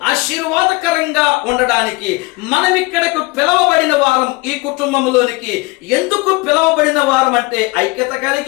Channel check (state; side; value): quieter; right; 23.8 dB